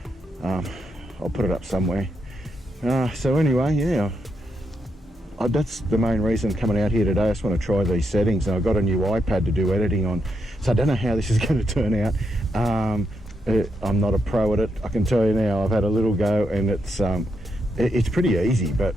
I'll put it up somewhere. So anyway, yeah, that's the main reason coming out here today. I just want to try these settings, and I've got a new iPad to do editing on, so I don't know how this is going to turn out. I'm not a pro at it, I can tell you now. I've had a little go, and it's pretty easy, but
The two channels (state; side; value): normal; both; correlation 0.82